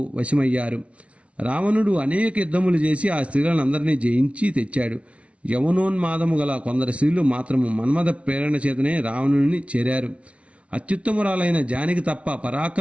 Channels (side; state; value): left; late; 0.062 ms